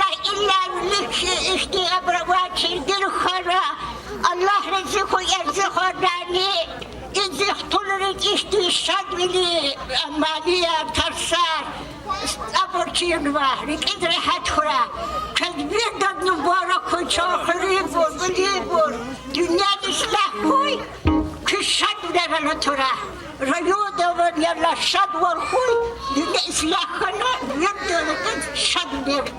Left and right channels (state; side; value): identical; both; correlation 1.00